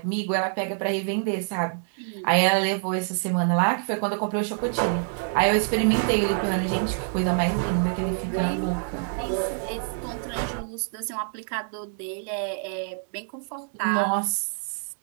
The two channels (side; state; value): left; silent; digital silence